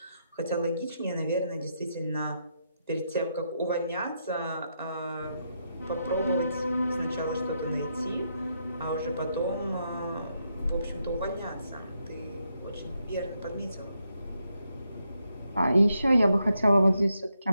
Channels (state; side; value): inverted; both; correlation -0.81